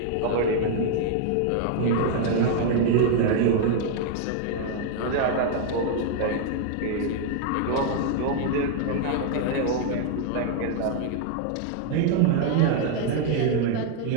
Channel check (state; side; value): different; both; correlation 0.00